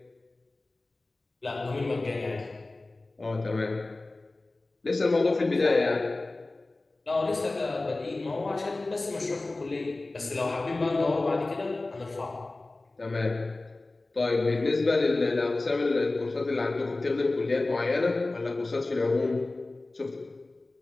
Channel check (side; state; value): right; quieter; 3.1 dB